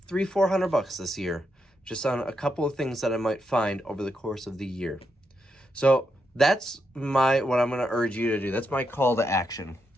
this year, just on a couple of things that I might find over the course of the year. So that's what I'm going to urge you to do. That's my call to action.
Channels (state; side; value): normal; both; correlation 0.82